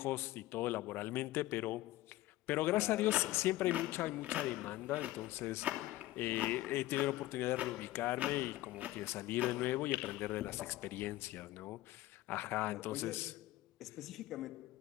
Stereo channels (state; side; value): quieter; right; 16.5 dB